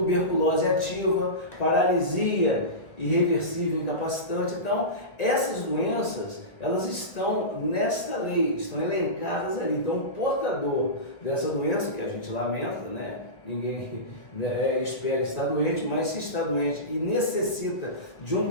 ativa, paralisia irreversível, incapacitante. Então, essas doenças, elas estão nesta lei, estão elencadas ali. Então, o portador dessa doença, que a gente lamenta, né? Ninguém espera estar doente, mas se está doente e necessita de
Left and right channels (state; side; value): late; right; 1.5 ms